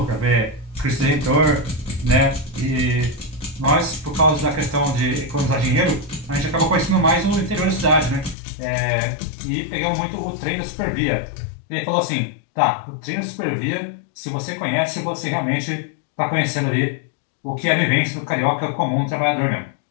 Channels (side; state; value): right; drops out; at 8.3 s